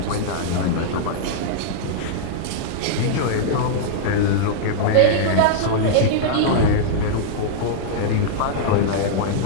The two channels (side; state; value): both; different; correlation -0.02